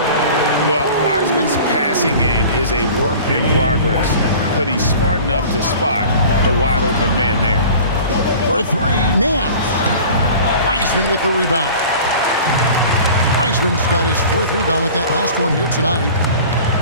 Well, Wiseman's passing game is a work in progress, but he's smart enough to spot the wide open man there. For 3, Nance. Wiseman with the rebound. Wiseman's got his 4th rebound with that last one here tonight.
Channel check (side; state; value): both; inverted; correlation -0.42